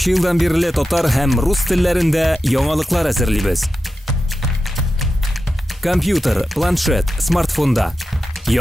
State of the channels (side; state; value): both; normal; correlation 0.91